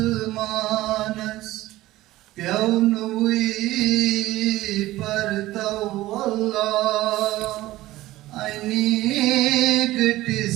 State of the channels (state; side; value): quieter; left; 16.8 dB